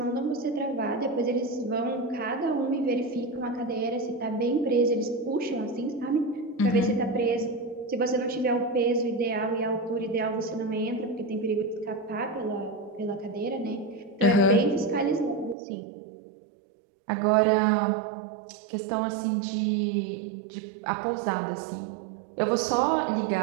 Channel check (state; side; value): drops out; left; at 15.6 s